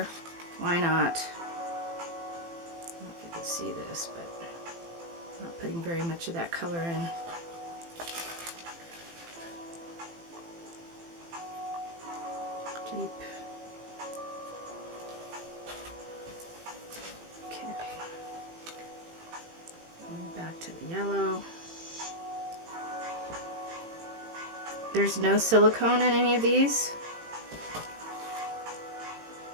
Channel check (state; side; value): late; left; 18 ms